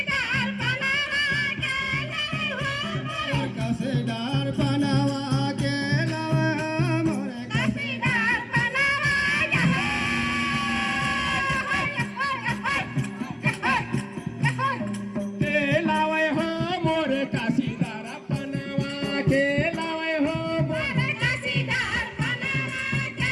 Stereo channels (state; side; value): identical; both; correlation 1.00